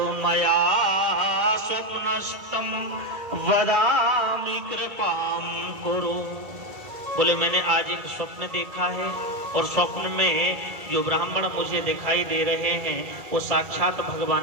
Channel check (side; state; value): left; late; 1.9 ms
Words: मया स्वप्नस्तम वदामि कृपाम कुरु। बोले मैंने आज एक स्वप्न देखा है और स्वप्न में जो ब्राह्मण मुझे दिखाई दे रहे हैं वो साक्षात